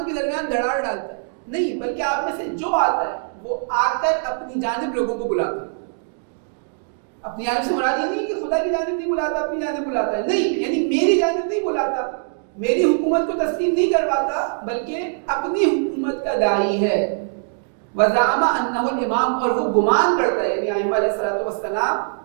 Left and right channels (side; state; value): left; silent; digital silence